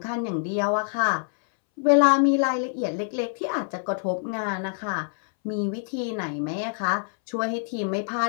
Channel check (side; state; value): right; silent; 61 dB below the other